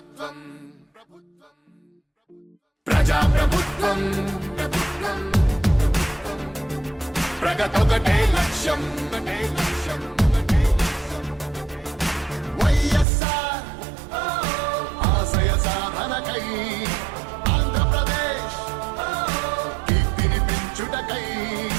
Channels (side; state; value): left; drops out; at 13.1 s